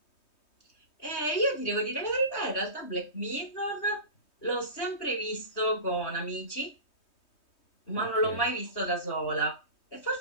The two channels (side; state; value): right; late; 3.2 ms